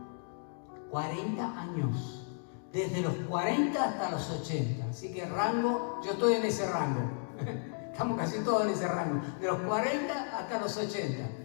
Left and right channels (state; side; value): silent; right; 55 dB below the other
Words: 40 años. Desde los 40 hasta los 80. Así que rango, yo estoy en ese rango. Estamos casi todos en ese rango. De los 40 hasta los 80.